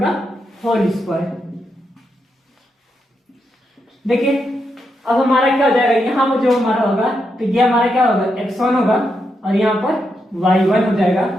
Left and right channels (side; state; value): both; normal; correlation 0.83